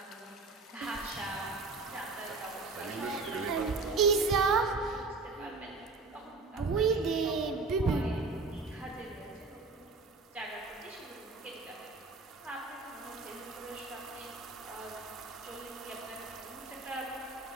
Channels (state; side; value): quieter; left; 3.9 dB